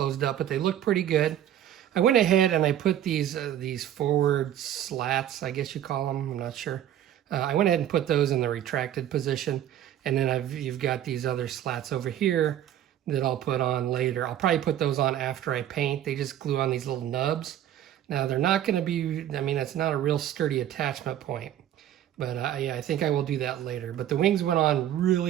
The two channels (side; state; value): left; quieter; 11.2 dB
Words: up, but they look pretty good. I went ahead and I put these forward slats, I guess you call them, I'm not sure. I went ahead and put those in the retracted position, and then you've got these other slats over here that I'll put on later. I'll probably put those on after I paint. They just glue on these little nubs. Now they're not going to be, I mean, it's not a real sturdy attachment point, but yeah, I think I will do that later. But the wings went on